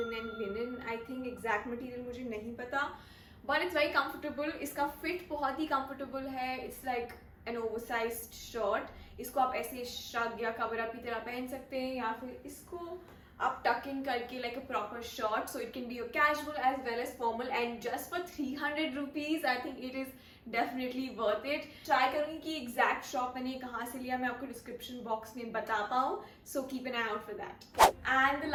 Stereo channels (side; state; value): both; identical; correlation 1.00